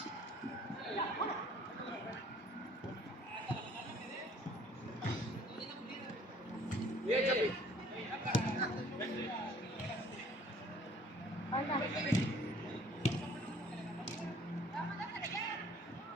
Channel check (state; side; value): normal; both; correlation 0.56